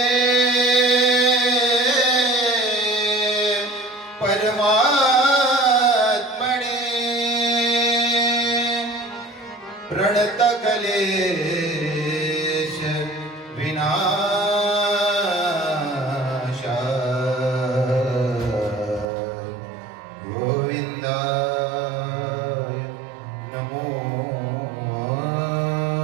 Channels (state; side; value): drops out; left; at 19.1 s